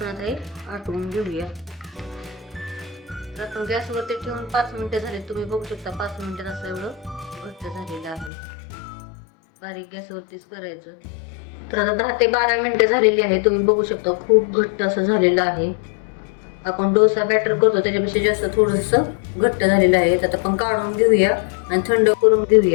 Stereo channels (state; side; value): drops out; right; at 8.3 s